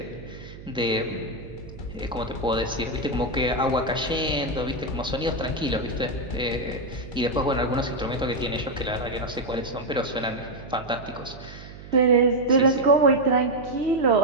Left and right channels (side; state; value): right; noise; hum, 15 dB below the sound